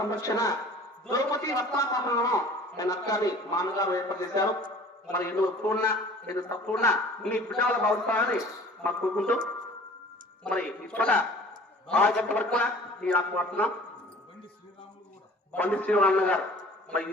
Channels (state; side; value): normal; both; correlation 0.47